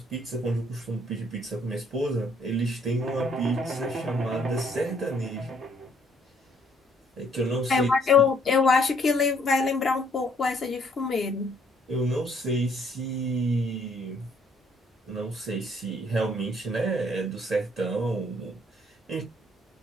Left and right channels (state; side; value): normal; both; correlation 0.65